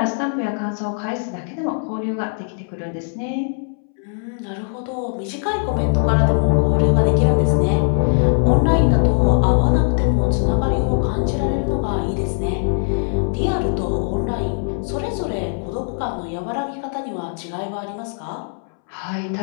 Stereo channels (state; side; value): silent; right; 65 dB below the other